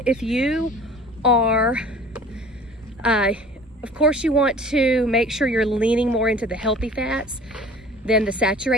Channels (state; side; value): normal; both; correlation 0.46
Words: if you are, of course you want to make sure you're leaning more into the healthy fats than the